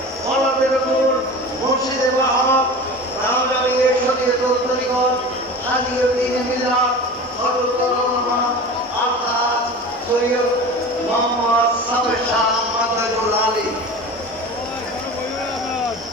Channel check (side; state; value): both; normal; correlation 0.34